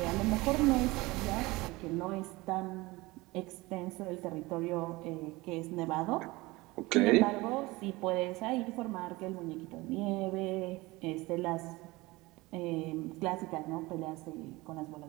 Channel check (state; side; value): quieter; left; 21.5 dB